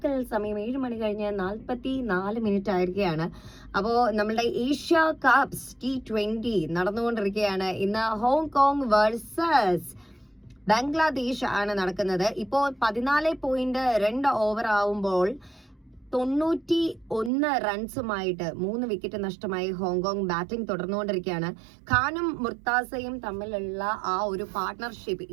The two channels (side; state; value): left; drops out; at 17.3 s